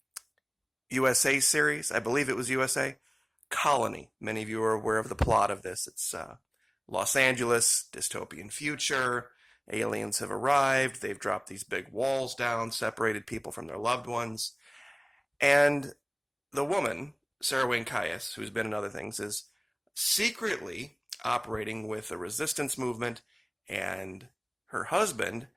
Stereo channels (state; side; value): identical; both; correlation 1.00